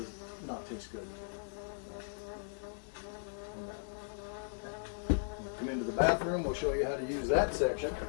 not taste good. Come into the bathroom, we'll show you how to use that section.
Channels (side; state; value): right; silent; 53 dB below the other